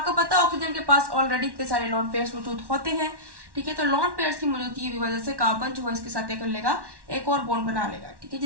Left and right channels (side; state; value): left; late; 1.1 ms